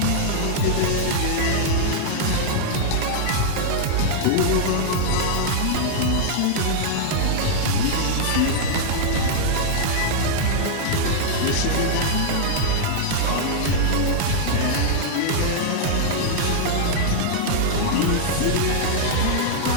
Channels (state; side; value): different; both; correlation -0.01